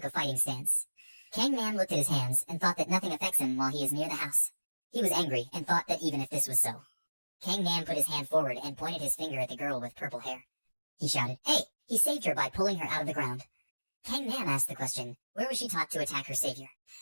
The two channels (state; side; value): inverted; both; correlation -1.00